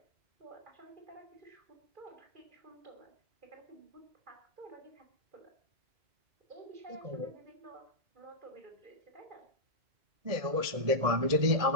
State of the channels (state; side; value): late; left; 1.7 ms